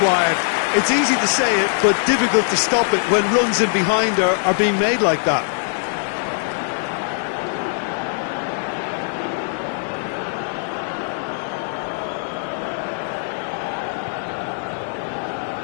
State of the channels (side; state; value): right; silent; 65 dB below the other